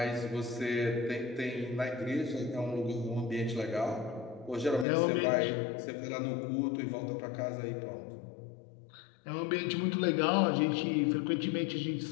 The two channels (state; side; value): drops out; right; at 4.9 s